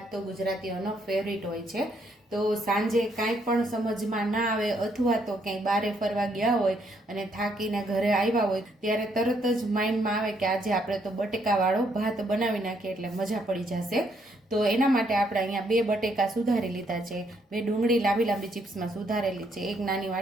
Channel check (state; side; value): normal; both; correlation 0.72